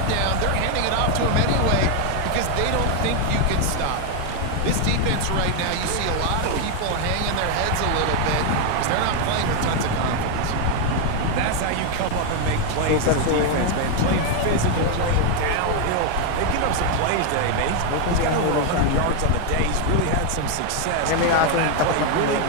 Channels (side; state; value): both; different; correlation 0.01